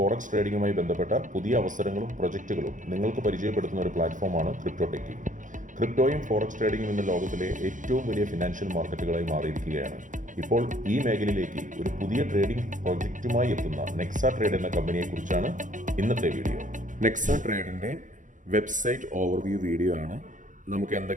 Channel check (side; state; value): left; late; 0.37 ms